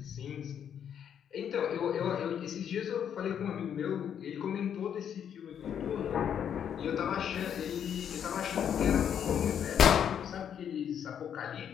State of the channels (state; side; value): quieter; right; 8.7 dB